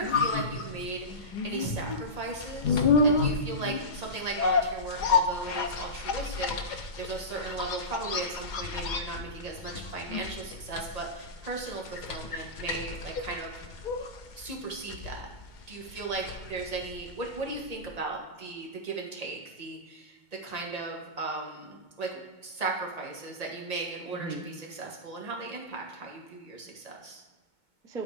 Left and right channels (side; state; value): right; late; 2.2 ms